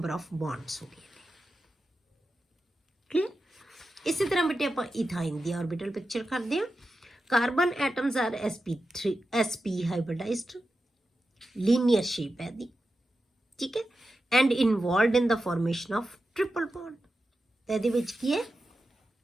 ऑफ बॉन्ड्स हो गए क्लियर इसी तरह बेटे आपां इथाइन दी ऑर्बिटल पिक्चर करते हैं carbon atoms are sp hybridized linear shape है दी ठीक है and involved in the formation of triple bond तो ਇਹਦੇ ਵਿੱਚ ਕੀ ਹੈ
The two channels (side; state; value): both; normal; correlation 0.91